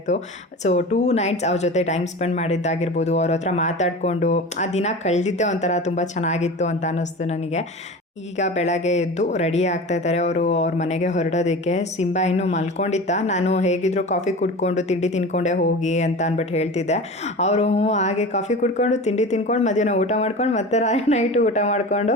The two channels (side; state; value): both; normal; correlation 0.33